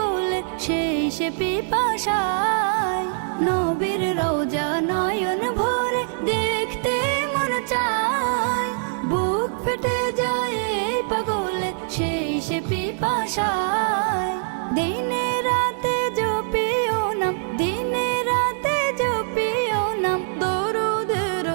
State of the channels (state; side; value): silent; left; digital silence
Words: সেই সে পিপাসায়। নবীর রওজা নয়ন ভরে দেখতে মন চায়, বুক ফেটে যায় এই পাগলে সেই সে পিপাসায়। দিনে রাতে জপিও নাম, দিনে রাতে জপিও নাম দরুদের